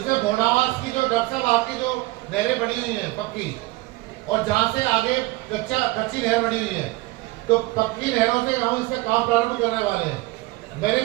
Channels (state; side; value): quieter; left; 20.6 dB